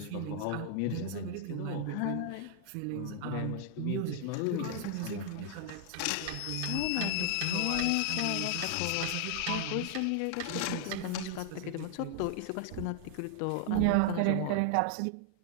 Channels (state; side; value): different; both; correlation 0.00